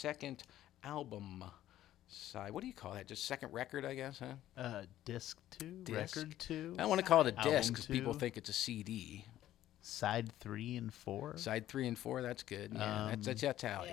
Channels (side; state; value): right; quieter; 13.1 dB